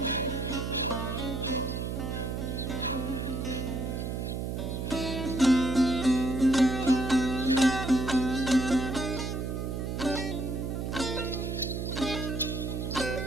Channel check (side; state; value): right; noise; hum, 3 dB below the sound